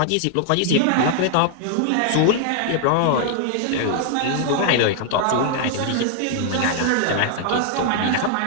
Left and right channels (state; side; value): different; both; correlation 0.00